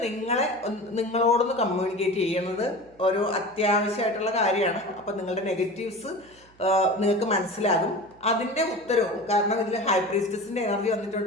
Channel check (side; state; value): right; noise; hum, 29 dB below the sound